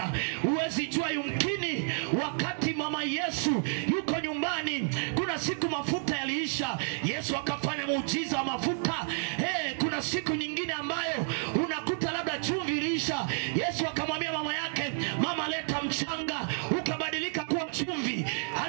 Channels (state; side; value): silent; left; 57 dB below the other